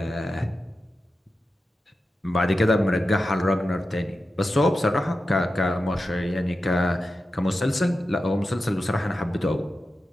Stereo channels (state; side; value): normal; both; correlation 0.91